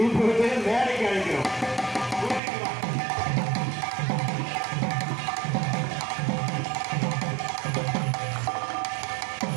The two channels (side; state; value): left; drops out; at 2.4 s